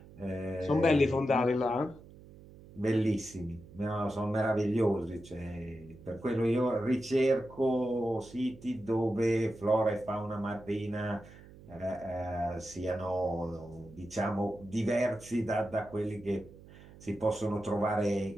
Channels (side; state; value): right; noise; hum, 20 dB below the sound